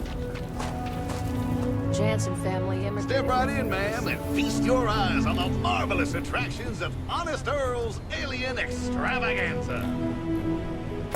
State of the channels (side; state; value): both; identical; correlation 1.00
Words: Jansen family immigrants. Step right in, ma'am, and feast your eyes on the marvelous attractions of Honest Earl's Alien Extravaganza.